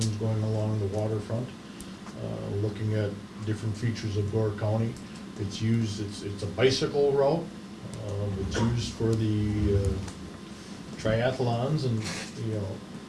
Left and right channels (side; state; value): both; identical; correlation 1.00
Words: going along the waterfront, looking at different features of Door County. It's used, it's a bicycle route. It's used for the triathlons and,